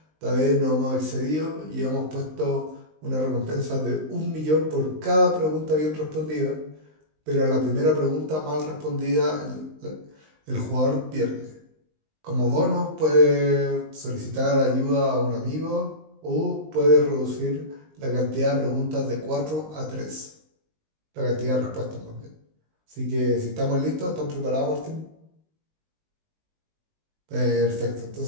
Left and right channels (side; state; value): left; late; 19 ms